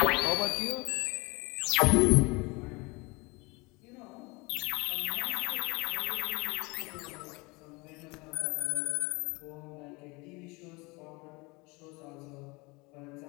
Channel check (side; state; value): right; quieter; 26.0 dB